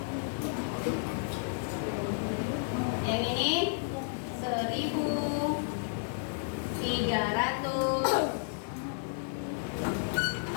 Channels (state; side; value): silent; right; 56 dB below the other